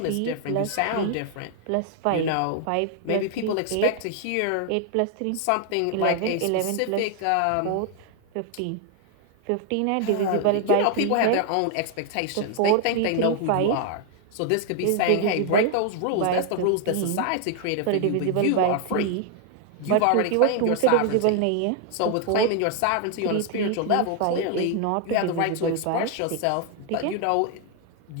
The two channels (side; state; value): both; different; correlation 0.00